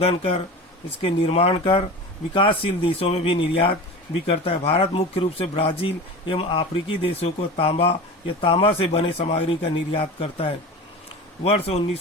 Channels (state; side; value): normal; both; correlation 0.32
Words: कर इसके निर्माण कर विकासशील देशों में भी निर्यात भी करता है। भारत मुख्य रूप से ब्राजील एवं अफ्रीकी देशों को तांबा या तांबा से बने सामग्री का निर्यात करता है। वर्ष